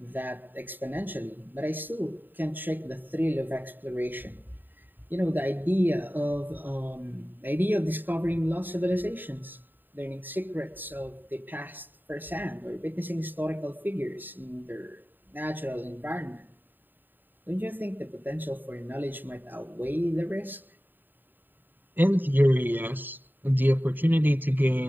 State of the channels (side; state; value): left; late; 0.091 ms